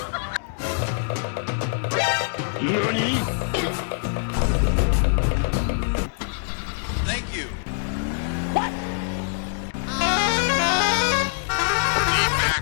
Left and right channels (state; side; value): silent; right; digital silence